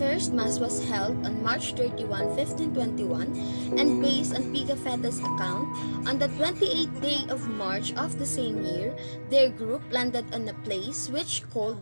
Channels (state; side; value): inverted; both; correlation -1.00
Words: first Mass was held on March 31, 1521, and based on Pigafetta's account, on the 28th day of March of the same year, their group landed on a place which